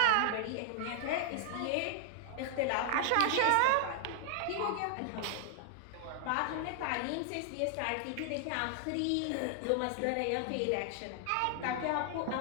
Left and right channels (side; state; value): both; different; correlation -0.01